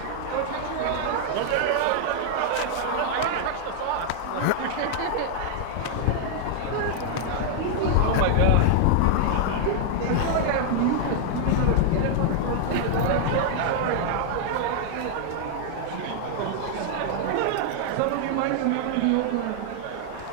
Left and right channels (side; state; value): both; different; correlation 0.00